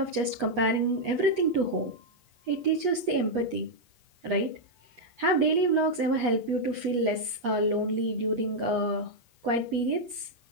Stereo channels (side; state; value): left; late; 8.4 ms